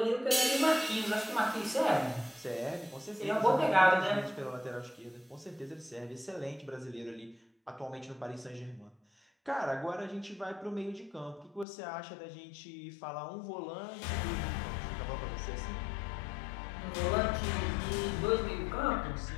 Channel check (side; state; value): right; drops out; at 11.7 s